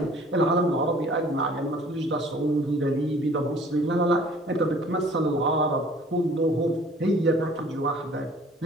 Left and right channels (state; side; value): normal; both; correlation 0.52